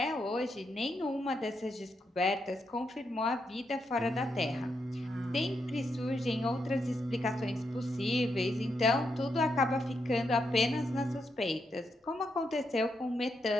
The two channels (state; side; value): normal; both; correlation 0.81